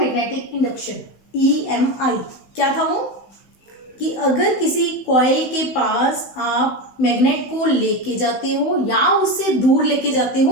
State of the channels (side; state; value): right; late; 16 ms